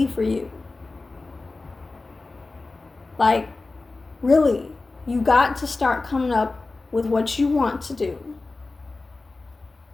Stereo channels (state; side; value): quieter; right; 3.5 dB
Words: for you. Like, really, you got to start coming up with what you want to do.